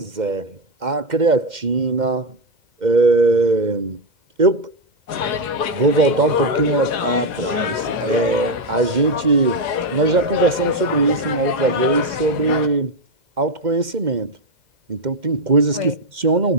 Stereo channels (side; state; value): left; late; 2.1 ms